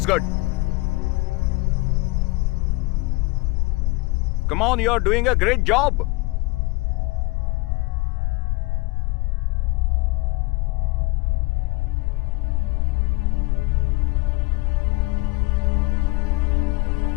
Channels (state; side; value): quieter; right; 23.7 dB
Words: good. Come on, you're doing a great job.